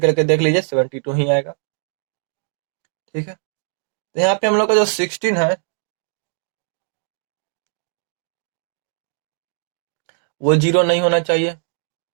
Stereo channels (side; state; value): left; silent; digital silence